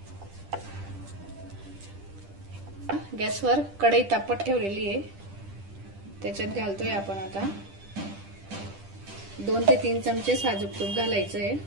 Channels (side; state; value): left; late; 10 ms